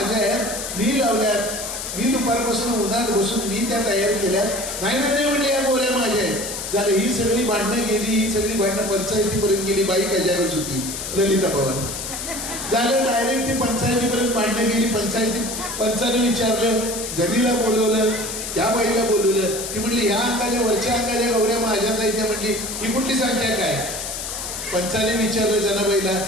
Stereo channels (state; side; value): noise; left; hiss, 6 dB below the sound